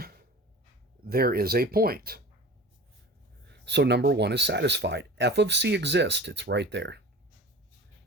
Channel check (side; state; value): both; normal; correlation 0.38